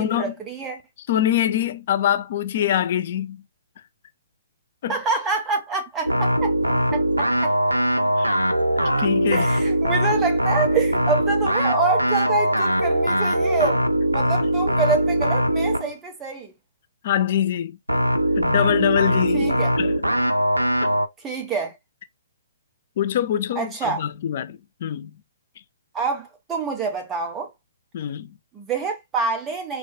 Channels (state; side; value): inverted; both; correlation -0.61